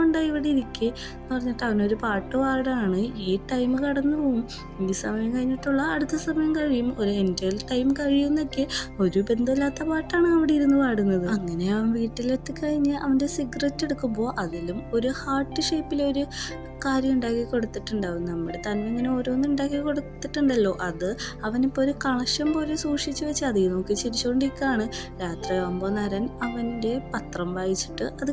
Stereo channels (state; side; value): identical; both; correlation 1.00